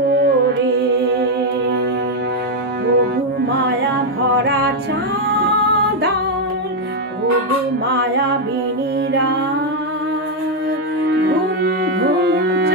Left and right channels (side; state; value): both; normal; correlation 0.02